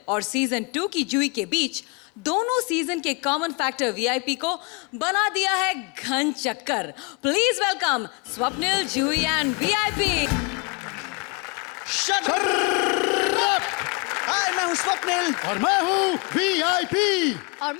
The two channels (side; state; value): right; quieter; 30.8 dB